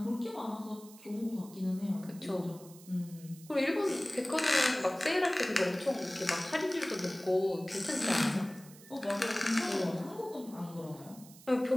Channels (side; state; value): right; noise; hiss, 21 dB below the sound